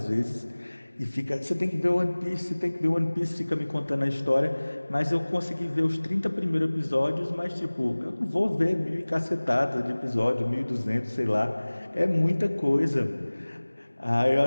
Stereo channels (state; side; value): inverted; both; correlation -1.00